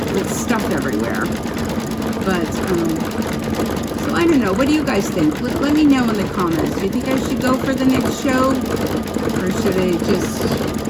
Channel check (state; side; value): identical; both; correlation 1.00